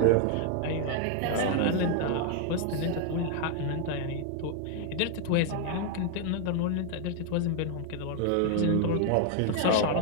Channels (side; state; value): both; different; correlation 0.00